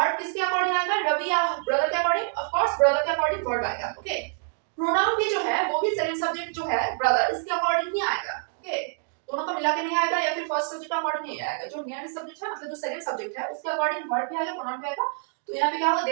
किसके अकॉर्डिंग आएगा, रवि या ब्रदर के अकॉर्डिंग, ऑफ कोर्स ब्रदर के अकॉर्डिंग वर्ब आएगा। ओके, प्रोनाउन भी जो है वो भी सेकंड सब्जेक्ट जो है ब्रदर इसके अकॉर्डिंग ही आएगा। ओके, दोनों का मिला के नहीं आएगा या फिर फर्स्ट सब्जेक्ट का अकॉर्डिंग नहीं आएगा। जो नियरेस्ट सब्जेक्ट है मतलब जो सेकंड सब्जेक्ट है उसके अकॉर्डिंग वर्ब भी आएगा, प्रोनाउन भी आएगा। तो यहाँ पे क्या होगा,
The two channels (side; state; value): left; silent; 57 dB below the other